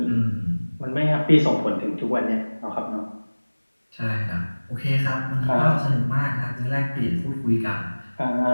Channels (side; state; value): both; inverted; correlation -1.00